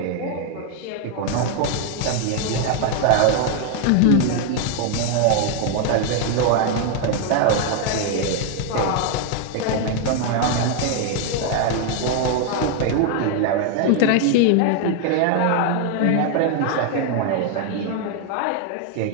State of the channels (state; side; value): different; both; correlation 0.00